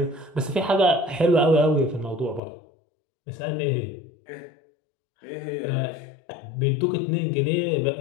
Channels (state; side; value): drops out; right; at 2.4 s